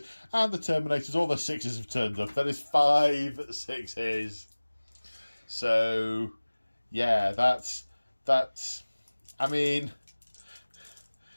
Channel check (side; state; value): both; inverted; correlation -1.00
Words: And the Terminators, all their 6s have turned up. That is 5 6s. So, yeah, that's, I mean,